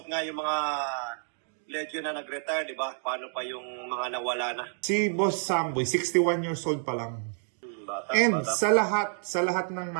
nga yung mga legend na nag-retire, di ba? Paano pa yung mga nawala na? Si Boss Samboy, 61 years old pa lang. Bata. Sa lahat ng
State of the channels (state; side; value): silent; left; 59 dB below the other